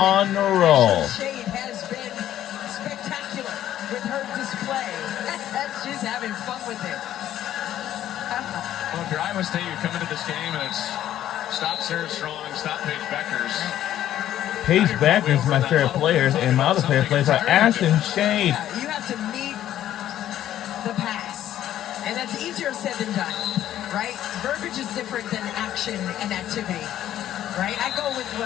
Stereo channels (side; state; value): right; quieter; 12.1 dB